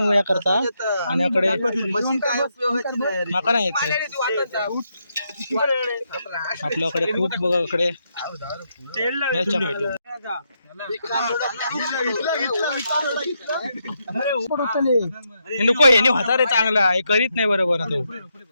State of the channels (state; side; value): inverted; both; correlation -0.81